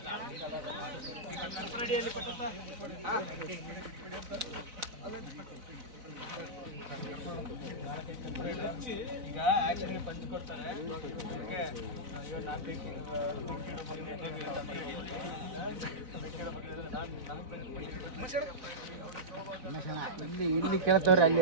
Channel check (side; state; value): left; late; 4.0 ms